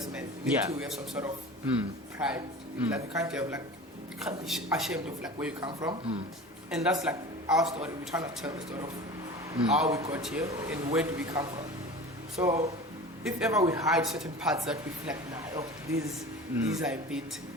man. You need to have some sort of pride. Like you can't be ashamed of like where you come from, and that's like our story. We're trying to tell the story of how we got here and where do we come from. So if ever we hide certain parts that we feel like, these are a bit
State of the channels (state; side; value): normal; both; correlation 0.36